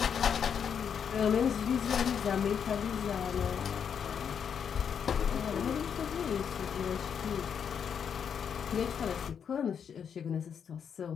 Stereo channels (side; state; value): right; quieter; 7.5 dB